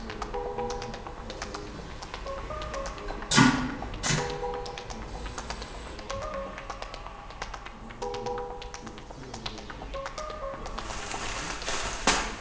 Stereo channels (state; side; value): identical; both; correlation 1.00